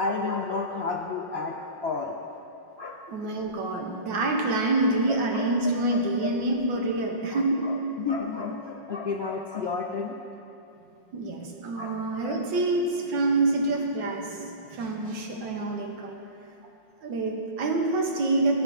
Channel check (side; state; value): left; late; 5.5 ms